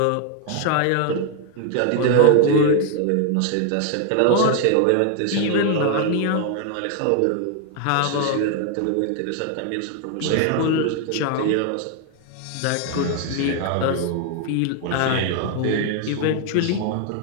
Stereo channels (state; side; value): different; both; correlation 0.00